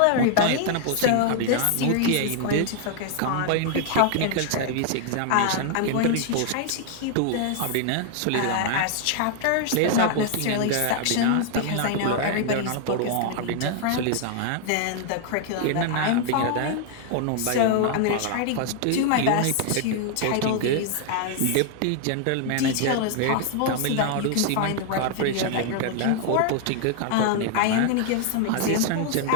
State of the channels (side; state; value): both; different; correlation 0.00